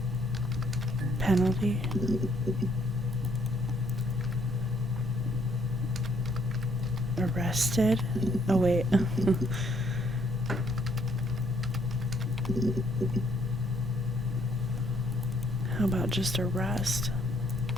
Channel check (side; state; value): both; normal; correlation 0.67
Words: penalty. Arrested? Oh, wait. How about just arrest?